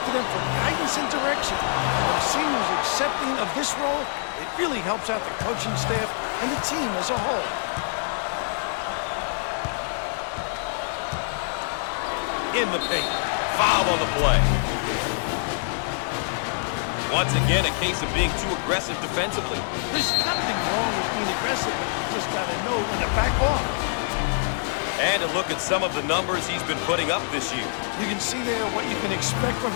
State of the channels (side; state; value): right; silent; digital silence